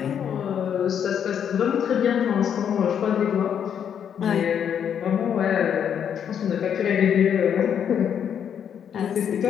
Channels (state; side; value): quieter; right; 8.4 dB